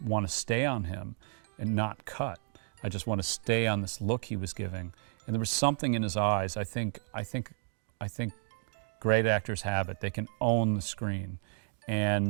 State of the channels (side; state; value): left; silent; 56 dB below the other